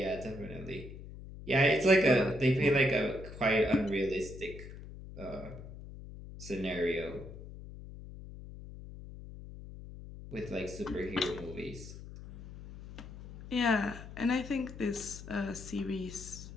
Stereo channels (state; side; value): noise; left; hum, 13 dB below the sound